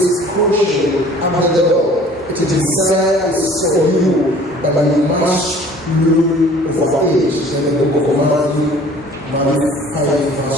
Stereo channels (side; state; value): right; noise; hum, 27 dB below the sound